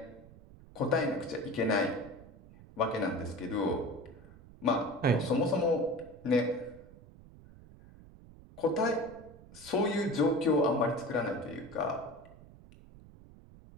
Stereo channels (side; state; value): right; noise; rumble, 21 dB below the sound